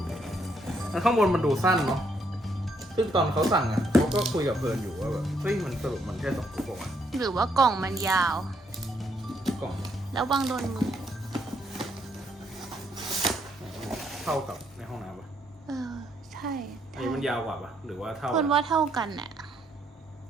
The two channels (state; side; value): normal; both; correlation 0.72